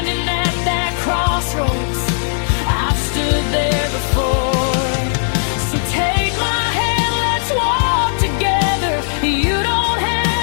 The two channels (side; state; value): right; silent; digital silence